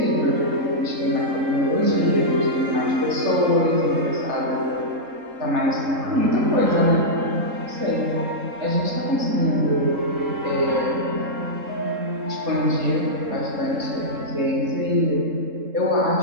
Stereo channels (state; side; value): late; left; 3.7 ms